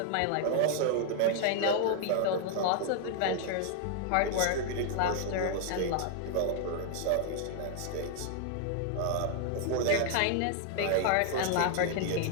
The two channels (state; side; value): different; both; correlation 0.00